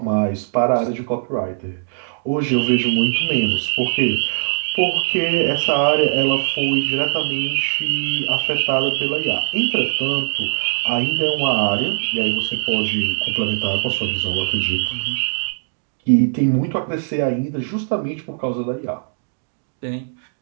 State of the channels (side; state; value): left; silent; digital silence